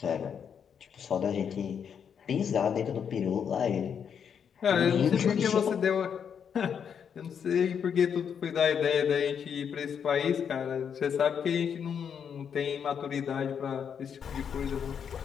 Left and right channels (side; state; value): right; quieter; 7.5 dB